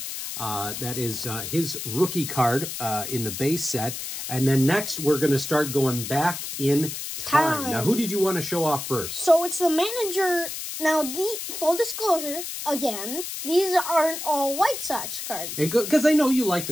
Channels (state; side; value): noise; left; hiss, 7 dB below the sound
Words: That is his rookie card in the base set. And then next, we're going to start going back in time. Now, who did you want to show off first? So it's the manager. Now, the full disclosure, again, these aren't all White Sox cards. Because I know you like the